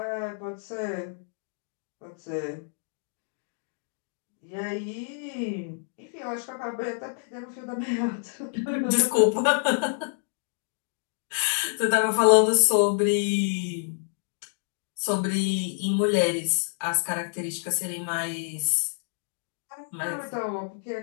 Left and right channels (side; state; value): right; silent; digital silence